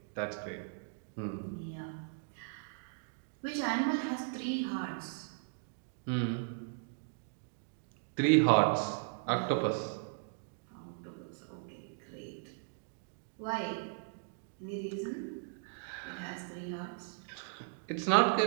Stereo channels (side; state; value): left; silent; digital silence